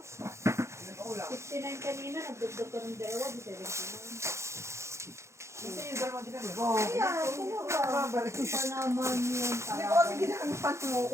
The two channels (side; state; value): left; late; 0.14 ms